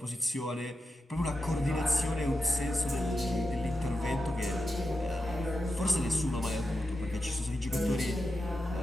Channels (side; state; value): both; normal; correlation 0.88